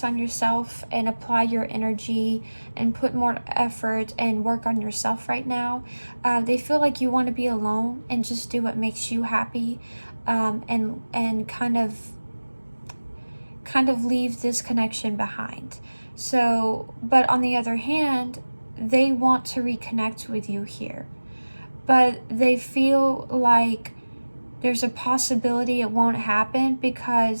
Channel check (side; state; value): both; inverted; correlation -1.00